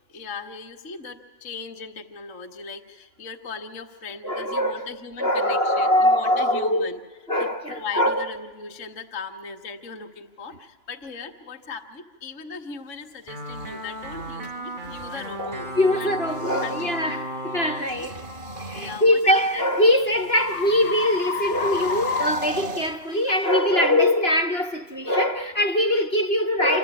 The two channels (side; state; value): right; late; 2.9 ms